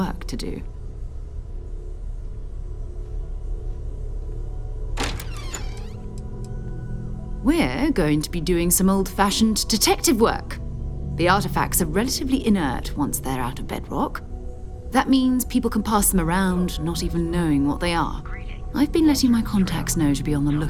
to do. We're going to be doing some old-fashioned detective work. The artifacts are relatively inert once they're out of bedrock. That means people can pass them around, not even knowing what they are. I've been letting my contacts know to be on the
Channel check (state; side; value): identical; both; correlation 1.00